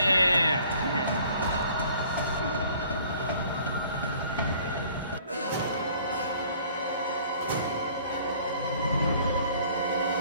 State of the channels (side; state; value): both; inverted; correlation -0.55